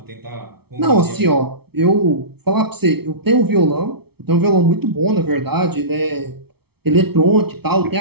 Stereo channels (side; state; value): left; late; 0.96 ms